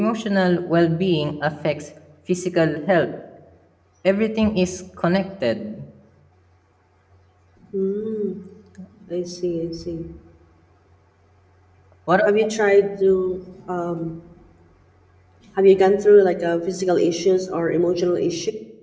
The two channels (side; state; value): both; identical; correlation 1.00